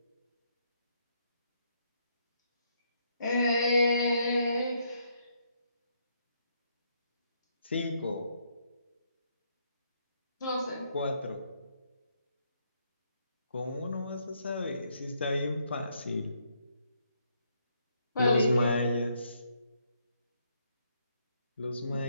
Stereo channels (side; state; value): both; inverted; correlation -0.74